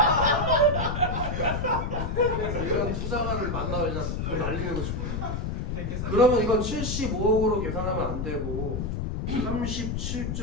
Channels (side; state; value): left; noise; rumble, 2 dB below the sound